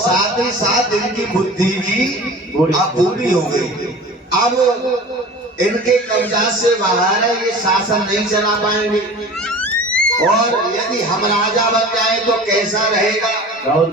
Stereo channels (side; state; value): both; normal; correlation 0.39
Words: ही साथ इनकी बुद्धि भी अब पूरी हो गई। अब इनके कब्जा से बाहर है, ये शासन नहीं चला पाएंगे। और यदि हम राजा बन जाए तो कैसा रहेगा? बहुत